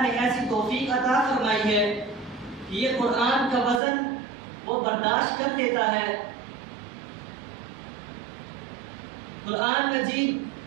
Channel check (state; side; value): drops out; left; at 3.8 s